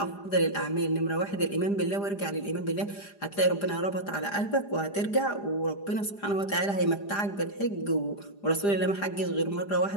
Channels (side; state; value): right; late; 4.9 ms